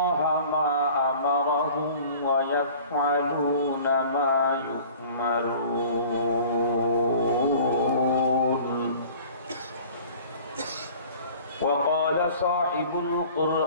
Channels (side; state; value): both; inverted; correlation -0.47